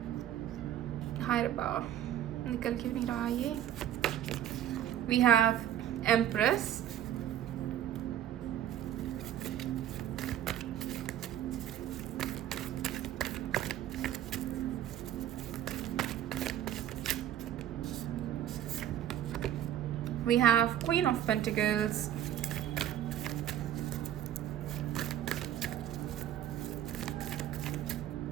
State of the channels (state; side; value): quieter; left; 11.2 dB